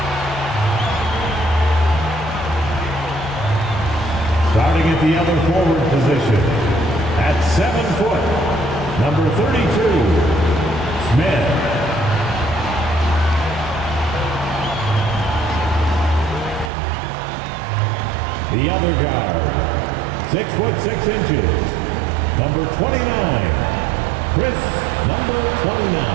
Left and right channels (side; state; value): left; drops out; at 16.7 s